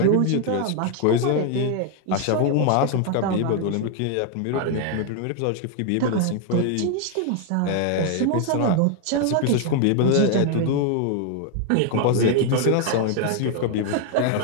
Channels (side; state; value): both; different; correlation 0.00